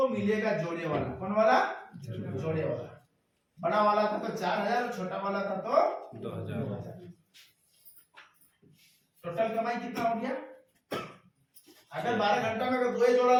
मिलेगा जोड़े वाला। कौन वाला? जोड़े वाला। बड़ा वाला था तो 4,000 और छोटा वाला था तो 2000। टोटल कमाई कितना हो गया? अगर 12 घंटा में अगर दो जोड़ा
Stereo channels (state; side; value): identical; both; correlation 1.00